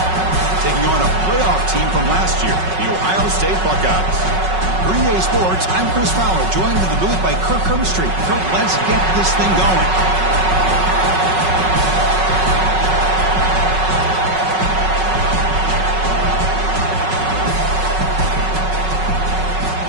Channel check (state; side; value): late; left; 5.4 ms